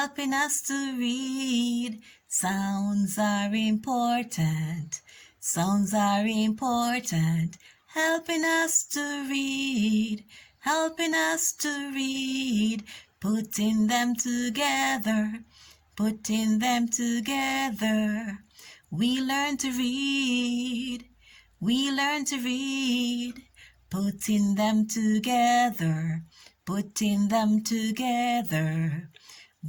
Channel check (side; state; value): both; identical; correlation 1.00